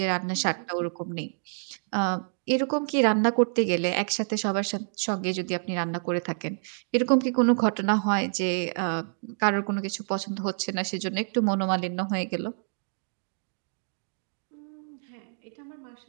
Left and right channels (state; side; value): silent; left; digital silence